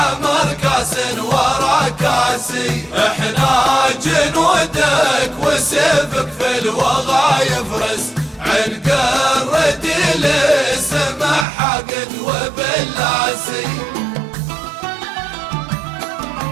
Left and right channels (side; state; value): left; drops out; at 11.5 s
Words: كاس ورا كاسي. احنا جنودك وسيفك في الوغى يفرس عن قرد لسمع حقد وبلاسي.